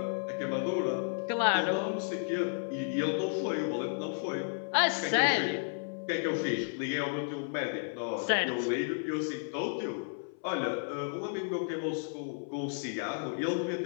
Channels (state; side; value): silent; right; 56 dB below the other